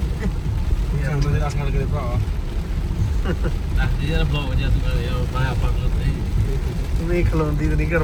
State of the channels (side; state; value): both; identical; correlation 1.00